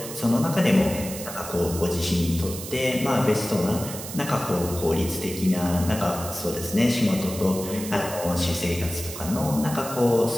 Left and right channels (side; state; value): right; noise; hiss, 10 dB below the sound